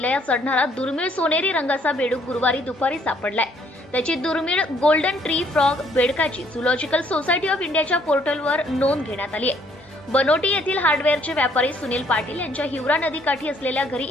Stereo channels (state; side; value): normal; both; correlation 0.65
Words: चढणारा दुर्मिळ सोनेरी रंगाचा बेडूक गुरुवारी दुपारी सापडलाय। त्याची दुर्मिळ गोल्डन ट्री फ्रॉग बेडकाची झूलॉजिकल सोसायटी ऑफ इंडियाच्या पोर्टलवर नोंद घेण्यात आली आहे। बनोटी येथील हार्डवेअरचे व्यापारी सुनील पाटील यांच्या हिवरा नदीकाठी असलेल्या घरी